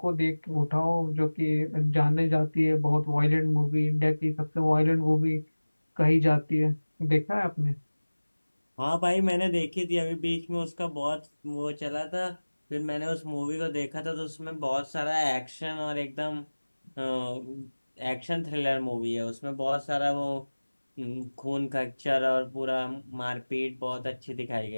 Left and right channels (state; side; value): inverted; both; correlation -1.00